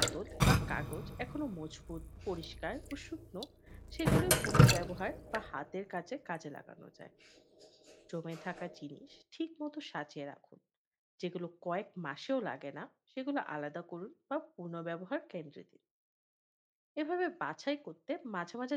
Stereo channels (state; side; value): identical; both; correlation 1.00